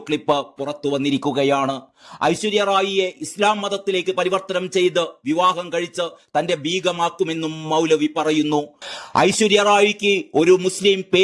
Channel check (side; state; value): both; identical; correlation 1.00